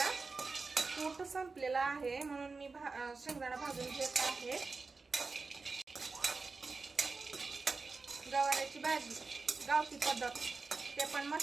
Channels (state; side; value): quieter; left; 4.1 dB